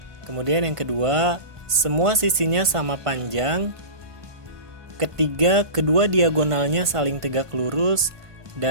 Kemudian yang kedua, semua sisinya sama panjang. Ketiga, kedua diagonalnya saling tegak lurus.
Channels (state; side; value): late; left; 1.5 ms